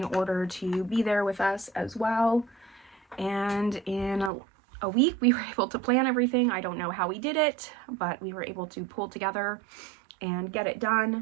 order to be there with us as well. And in a week, we were able to plan everything. I don't know how we did it, but we were able to pull together and get it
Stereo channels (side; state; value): left; drops out; at 4.3 s